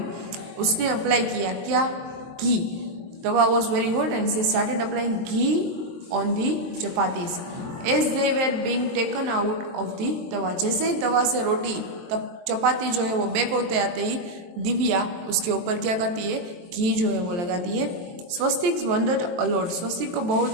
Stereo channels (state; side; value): late; left; 22 ms